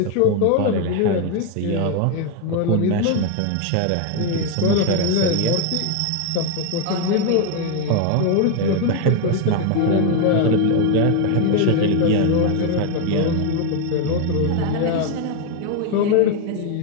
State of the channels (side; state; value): both; different; correlation 0.01